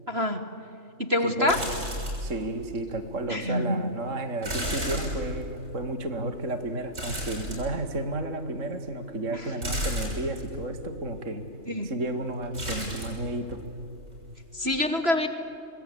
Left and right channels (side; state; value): left; late; 3.0 ms